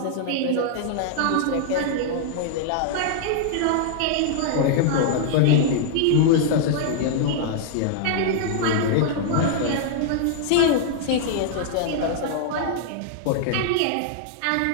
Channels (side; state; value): both; different; correlation -0.01